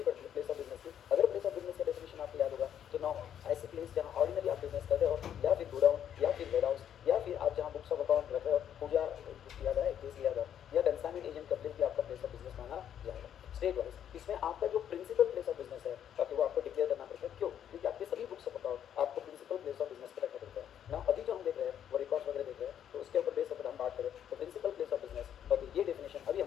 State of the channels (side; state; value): right; quieter; 9.6 dB